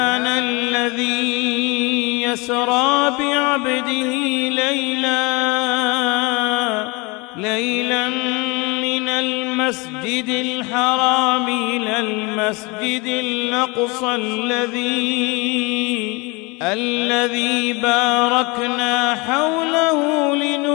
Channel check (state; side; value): quieter; right; 27.3 dB